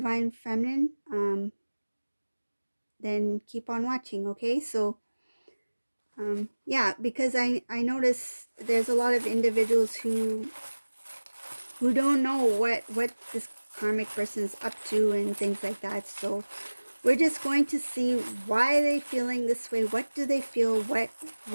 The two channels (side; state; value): both; inverted; correlation -1.00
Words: feminine, then keep on watching. Okay, so yeah, because I notice there's a lot of individuals who don't know what this karmic person is up to and things like that. So we're just going to see why they feeling this way. What do they feel? What